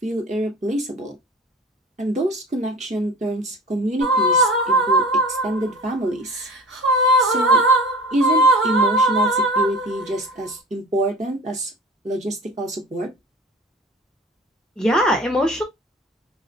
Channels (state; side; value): normal; both; correlation 0.39